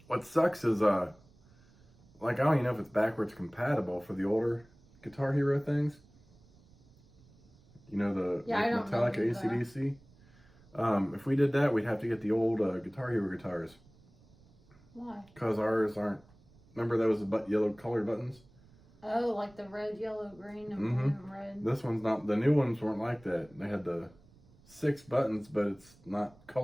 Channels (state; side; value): noise; right; rumble, 27 dB below the sound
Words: What sucks is, like, I don't even know if it's backwards compatible for the older Guitar Hero things. You know, the Metallica AC/DC. If we did that, we'd have to get the old Guitar Hero guitars. Why? Because ours aren't. Remember those yellow colored buttons? Oh, like the red, yellow, green, and blue and red. This one's not. The new ones weren't like that. They had the 6 buttons, but it's not